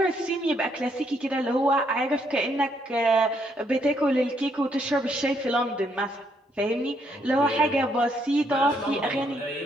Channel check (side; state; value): both; normal; correlation 0.72